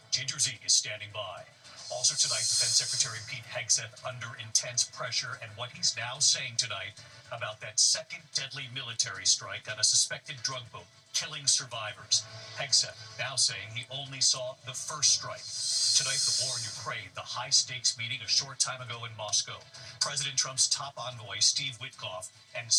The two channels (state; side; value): identical; both; correlation 1.00